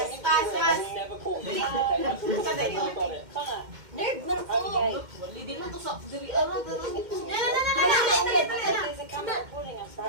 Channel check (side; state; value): left; late; 2.1 ms